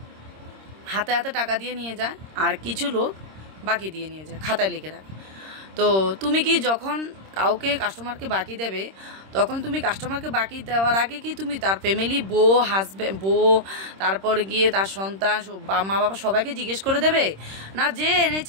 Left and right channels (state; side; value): late; left; 26 ms